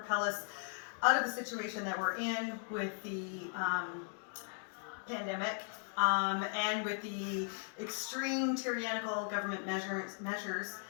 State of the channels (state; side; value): silent; right; 53 dB below the other